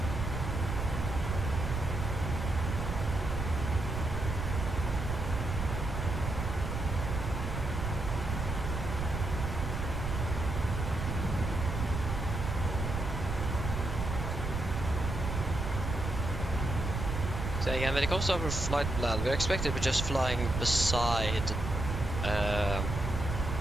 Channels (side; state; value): right; noise; rumble, 3 dB below the sound